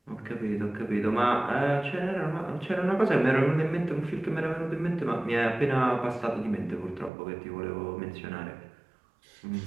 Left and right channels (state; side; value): drops out; left; at 7.1 s